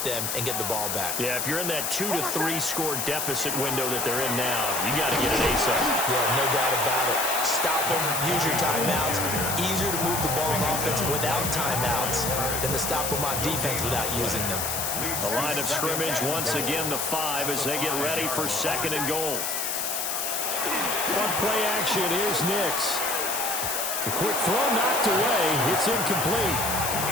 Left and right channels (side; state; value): left; noise; hiss, 1 dB below the sound